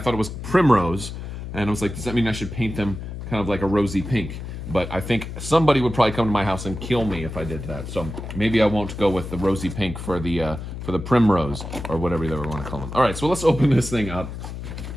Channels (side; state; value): left; noise; hum, 8 dB below the sound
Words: it was Primrose, and I was like, does that mean I should paint them kind of like a rosy pink? But I think somebody would probably come to my house and kill me if I did that. So maybe I won't go with the rosy pink for the Primrose, or whatever you want to call them. All right, so let's open this thing up.